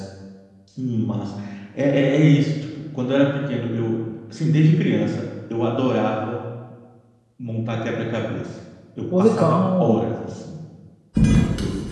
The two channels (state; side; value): identical; both; correlation 1.00